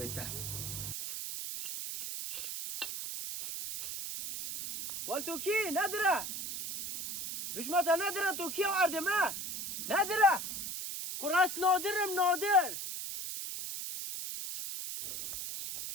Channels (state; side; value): noise; right; hiss, 5 dB below the sound